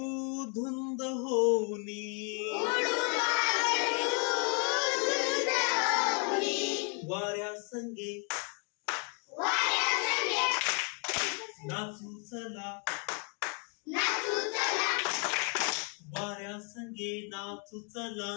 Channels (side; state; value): right; quieter; 38.2 dB